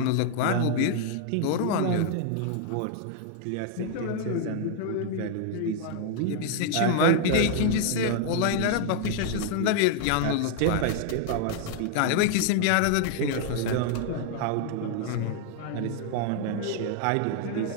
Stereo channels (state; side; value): different; both; correlation 0.00